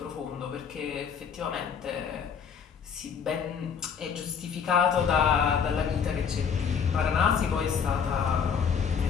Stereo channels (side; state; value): right; quieter; 6.9 dB